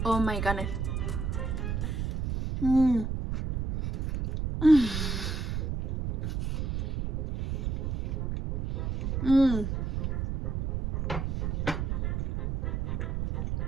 Oh my goodness.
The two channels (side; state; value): right; noise; rumble, 1 dB below the sound